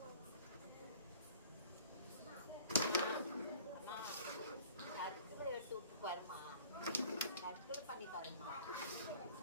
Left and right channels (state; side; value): inverted; both; correlation -0.49